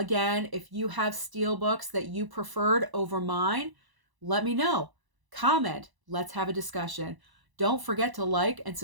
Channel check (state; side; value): late; left; 1.0 ms